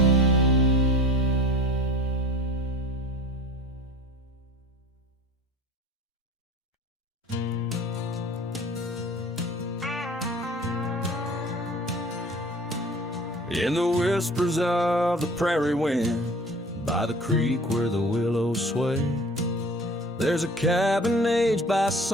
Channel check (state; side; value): normal; both; correlation 0.44